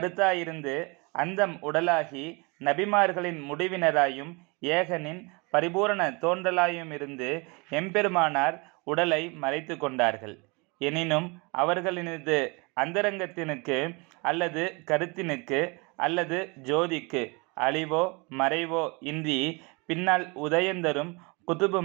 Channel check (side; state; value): left; quieter; 28.9 dB